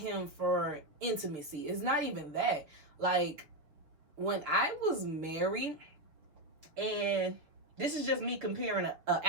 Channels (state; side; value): late; left; 6.5 ms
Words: for intimacy. It's not even that. Like, when I was married, and this is just me comparing an